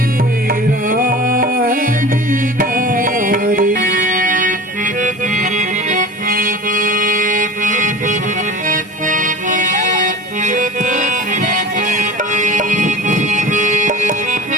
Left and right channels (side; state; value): both; normal; correlation 0.36